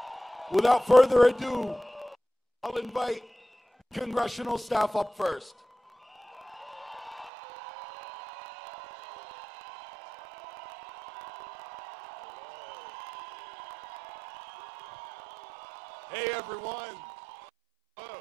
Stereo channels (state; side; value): drops out; left; at 7.3 s